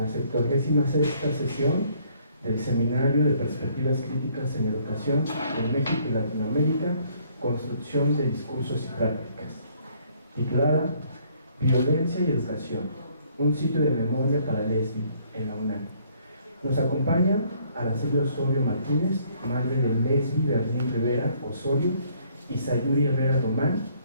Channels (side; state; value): both; inverted; correlation -0.64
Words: 76ª sesión del Seminario de Perspectivas Críticas en Educación en México y Latinoamérica, Construcción de Discursos y Prácticas, titulada Violencia y Educación, un sitio de memoria para Lesbi en la UNAM. Nos acompaña Araceli Osorio Martínez, madre de Lesbi Berlín Rivera Osorio, y Sayuri Herrera Román,